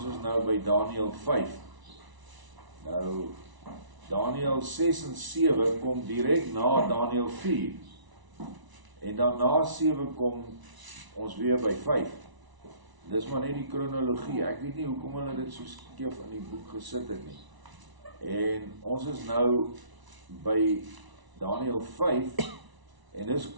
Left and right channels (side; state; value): left; late; 1.0 ms